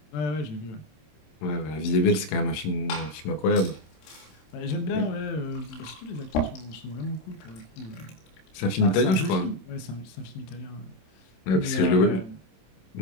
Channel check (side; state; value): right; late; 27 ms